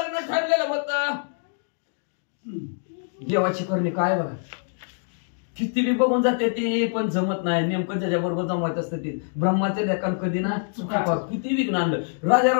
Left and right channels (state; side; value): silent; right; digital silence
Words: ठरलेलं होतं. देवाची करणी काय बघा किती बी बघून जाते ते पण जमत नाही. नेमकं त्याच्याबरोबर जमवायचं असतं ते ब्रह्माच्या लेखान कधी ना चुका किती विघ्न आणलं. राजा